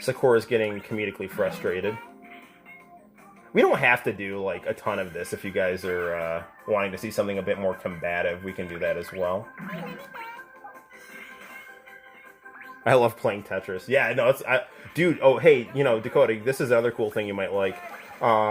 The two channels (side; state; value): both; identical; correlation 1.00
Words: getting comedically frustrated. We don't have to do, like, a ton of this. If you guys are wanting to see something a bit more combative, we can do that as well. I love playing Tetris. Yeah, no, it's... dude, oh, hey, you know, Dakota, this is another cool thing you might like.